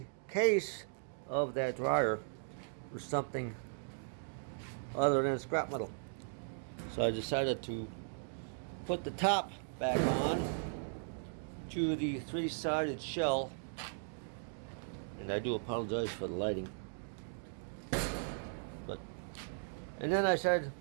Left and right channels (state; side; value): silent; left; digital silence